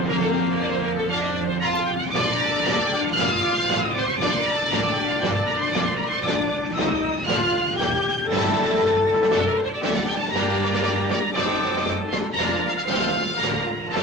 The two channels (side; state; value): both; normal; correlation 0.47